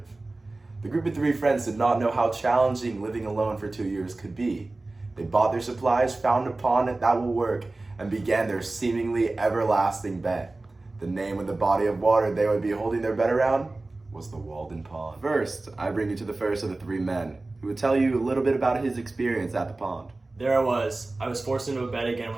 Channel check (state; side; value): quieter; left; 3.1 dB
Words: The group of three friends did not know how challenging living alone for 2 years could be. They bought their supplies, found a pond that will work, and began their seemingly everlasting bet. The name of the body of water they would be holding their bet around was the Walden Pond. First, I bring you to the first of the three men, who would tell you a little bit about his experience at the pond. There I was forced into a bet again